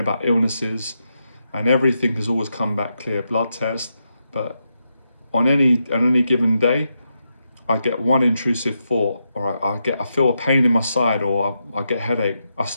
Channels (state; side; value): inverted; both; correlation -0.84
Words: illnesses, and everything has always come back clear, blood test. But on any given day, I get one intrusive thought, or I feel a pain in my side, or I get a headache. I